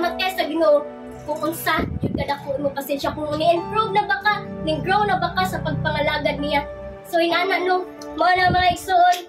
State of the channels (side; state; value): both; identical; correlation 1.00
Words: sa Ginoo, kung unsa, yun kadako mo pasensya, kung ni-improve na ba ka, ni-grow na ba ka sa pagpangalagad niya. So, inana no, mo na mga